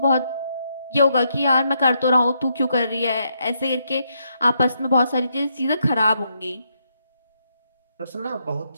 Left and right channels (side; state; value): both; inverted; correlation -0.78